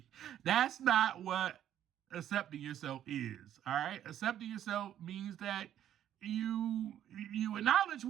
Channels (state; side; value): quieter; left; 11.0 dB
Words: That's not what accepting yourself is, all right? Accepting yourself means that you acknowledge